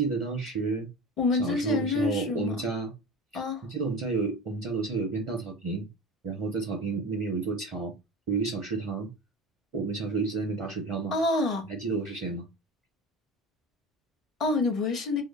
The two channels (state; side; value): normal; both; correlation 0.32